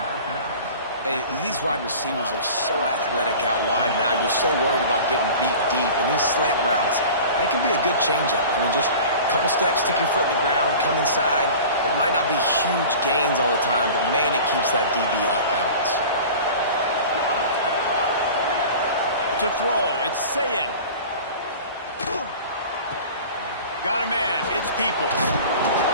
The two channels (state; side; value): inverted; both; correlation -0.39